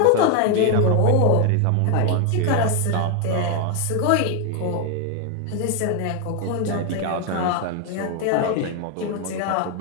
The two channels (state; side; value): different; both; correlation 0.01